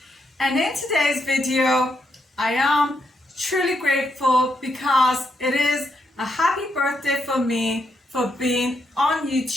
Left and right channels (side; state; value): both; normal; correlation 0.79